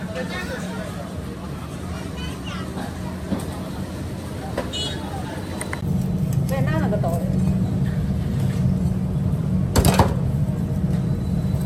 别拿那个刀的。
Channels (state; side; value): identical; both; correlation 1.00